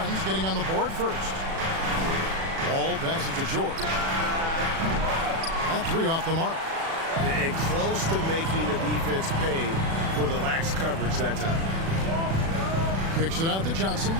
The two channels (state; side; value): late; left; 36 ms